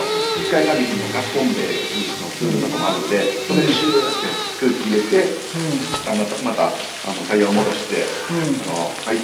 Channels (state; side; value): identical; both; correlation 1.00